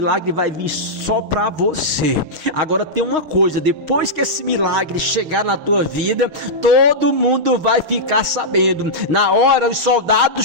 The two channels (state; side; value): late; left; 6.4 ms